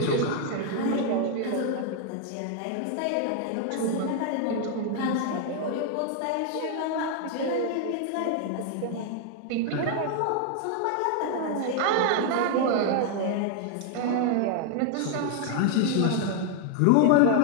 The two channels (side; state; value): both; different; correlation 0.00